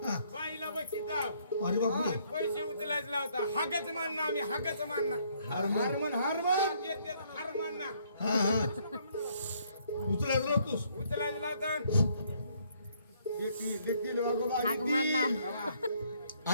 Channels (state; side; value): inverted; both; correlation -0.67